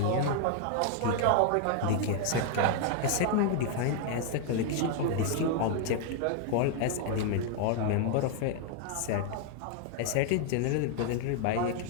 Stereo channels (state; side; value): different; both; correlation 0.00